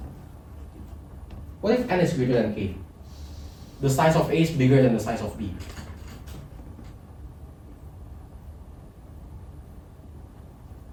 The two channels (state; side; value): identical; both; correlation 1.00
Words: n is greater than k? The size of A is bigger than the size of B.